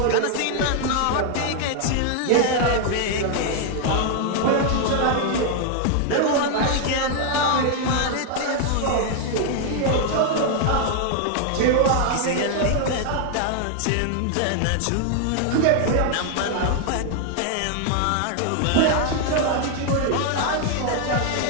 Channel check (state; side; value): different; both; correlation 0.00